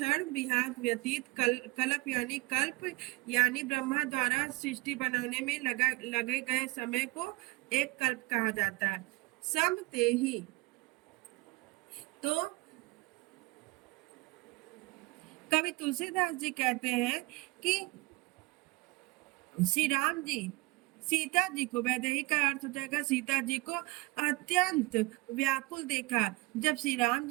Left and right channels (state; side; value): quieter; left; 22.5 dB